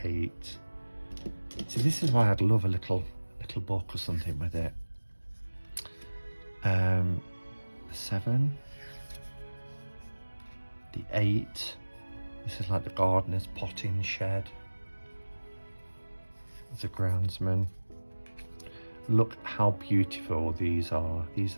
8. See, this is why I'd love a little book or something with it. 7. The 8. This is like the gardener's potting shed. There's a groundsman. Look how beautiful these are. These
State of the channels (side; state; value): both; inverted; correlation -1.00